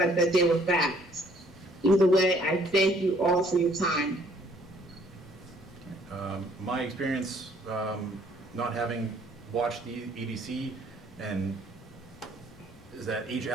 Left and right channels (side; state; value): both; normal; correlation 0.62